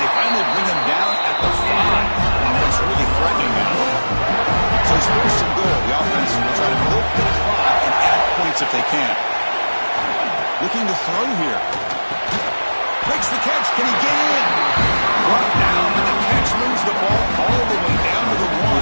they finally bring him down at the 5. Offense really threatening now. So it's 1st and goal. The offense will try to milk the clock and add points if they can. Looking to throw here. Breaks the catch. Can he get in? Brought down, and the catch moves the ball all the way down to the 1.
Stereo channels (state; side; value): inverted; both; correlation -1.00